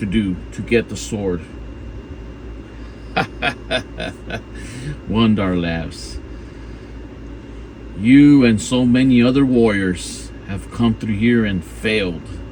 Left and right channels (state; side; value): identical; both; correlation 1.00